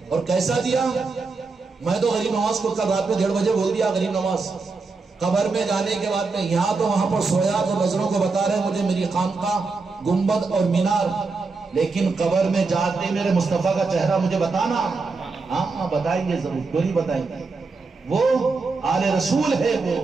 اور کیسا دیا. میں تو غریب نواز کو کل رات میں 1:30 بجے بول دیا، غریب نواز قبر میں جانے کے بعد میں یہاں تو وہاں پر سویا تو نظروں کو بتا رہے مجھے میری خانقاہ، گنبد اور مینار، لیکن قبر میں جاتے میرے مصطفیٰ کا چہرہ مجھے بتانا. ہاں بتائیں گے ضرور، کیوں نہیں بتائیں گے. وہ آل رسول ہے، وہ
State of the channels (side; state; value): left; quieter; 4.1 dB